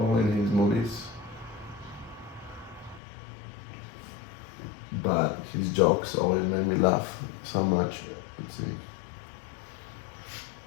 in his movies, but his jokes always made me laugh so much. Let's see.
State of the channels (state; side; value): drops out; right; at 3.0 s